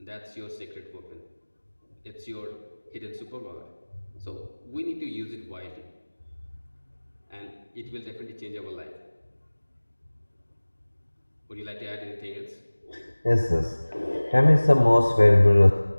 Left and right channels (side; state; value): both; inverted; correlation -1.00